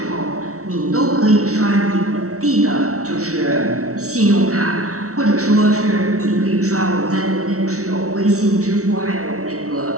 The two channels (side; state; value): left; late; 0.64 ms